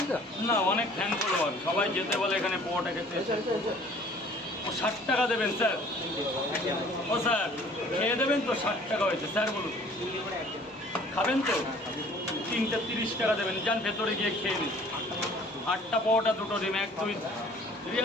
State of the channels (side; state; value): both; normal; correlation 0.52